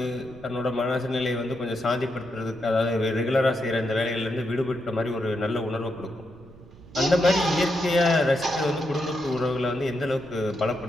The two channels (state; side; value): noise; right; rumble, 21 dB below the sound